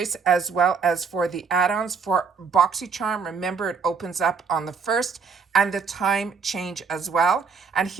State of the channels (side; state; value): left; quieter; 5.4 dB